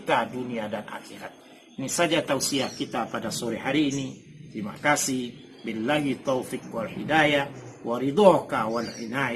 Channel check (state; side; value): identical; both; correlation 1.00